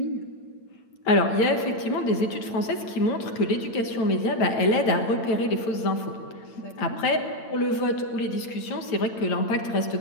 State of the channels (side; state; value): right; late; 8.9 ms